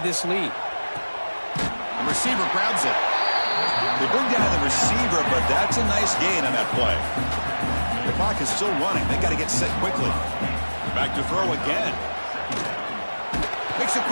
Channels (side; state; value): both; inverted; correlation -1.00